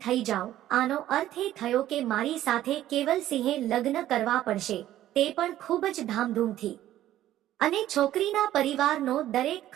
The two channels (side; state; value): left; quieter; 13.2 dB